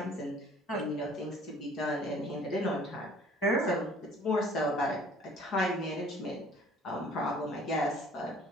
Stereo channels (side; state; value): both; normal; correlation 0.53